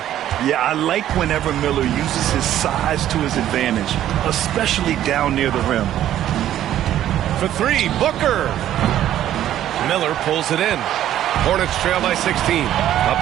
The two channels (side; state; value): left; quieter; 12.0 dB